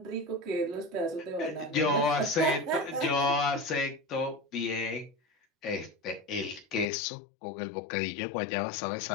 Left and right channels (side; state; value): right; drops out; at 6.9 s